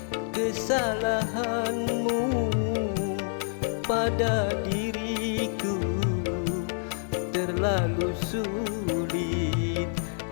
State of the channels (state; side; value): silent; right; digital silence